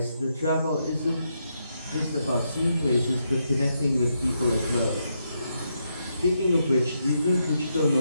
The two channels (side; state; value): both; inverted; correlation -0.81